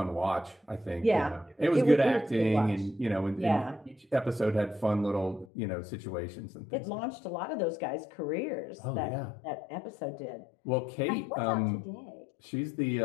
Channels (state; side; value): drops out; right; at 5.5 s